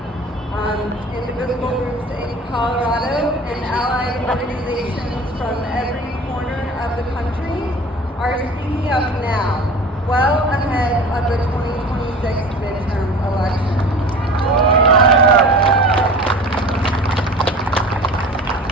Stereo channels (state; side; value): normal; both; correlation 0.39